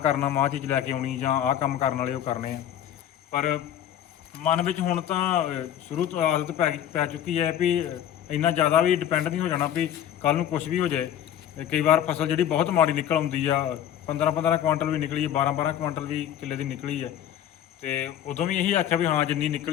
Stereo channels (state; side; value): quieter; right; 10.6 dB